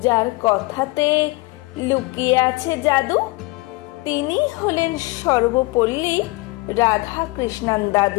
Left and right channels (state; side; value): quieter; right; 23.1 dB